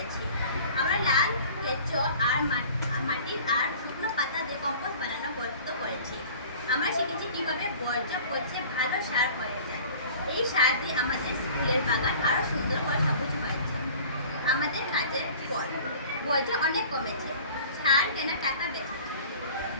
আমরা লাল কেঁচো আর মাটির আর শুকনো পাতা দিয়ে কম্পোস্ট বানানো গর্ত করেছি। আমরা শিখেছি কিভাবে বর্জ্য পচে ভালো সার হয়ে যায়। এই সার দিয়ে আমাদের স্কুলের বাগান আরো সুন্দর করে সবুজ হয়েছে। আমাদের কাজের ফল, বর্জ্য অনেক কমেছে, সার কেনা টাকা বেঁচেছে।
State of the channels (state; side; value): inverted; both; correlation -0.45